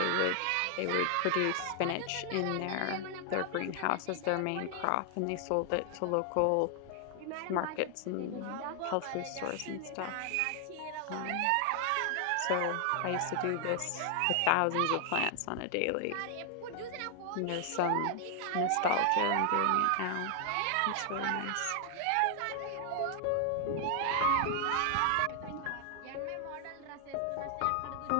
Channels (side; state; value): both; different; correlation 0.00